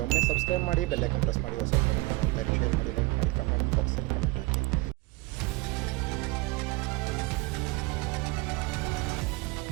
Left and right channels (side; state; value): left; quieter; 22.5 dB